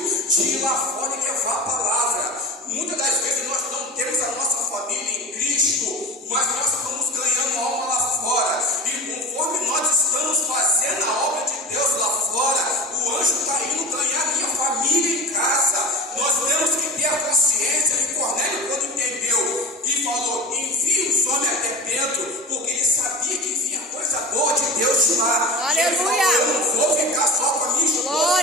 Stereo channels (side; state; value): both; normal; correlation 0.32